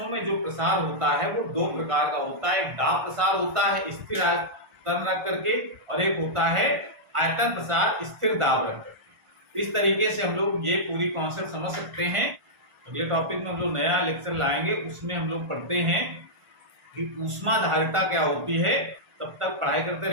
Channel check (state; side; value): late; left; 1.4 ms